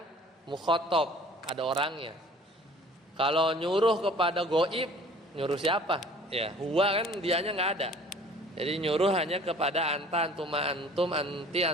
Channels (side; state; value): both; normal; correlation 0.50